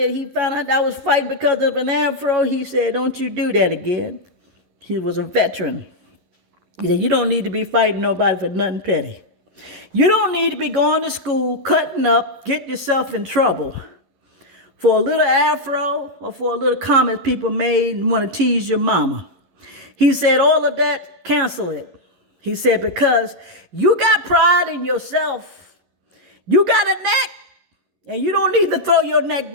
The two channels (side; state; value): left; late; 11 ms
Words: was fighting because of an afro, he said, don't you do that again. He was a veteran. He said, you don't need to be fighting nobody for nothing petty. You don't need to be going to school, cutting up, get yourself in trouble for a little afro or for a little comment people made and want to tease your mama. He said, all of that, cancel it. He said, because you got pride in yourself. You got a neck. And you don't need to throw your neck